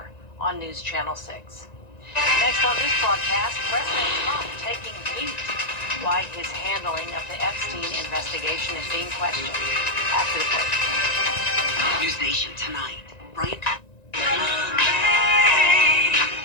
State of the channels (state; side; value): late; right; 1.9 ms